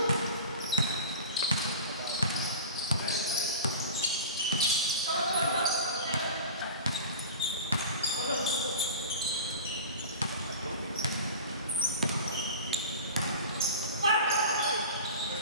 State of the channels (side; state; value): both; inverted; correlation -0.33